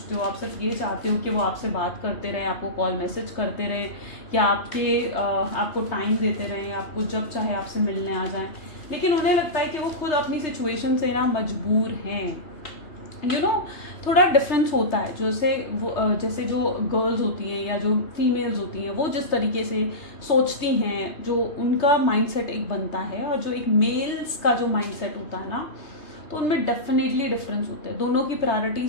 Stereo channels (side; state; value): right; late; 3.3 ms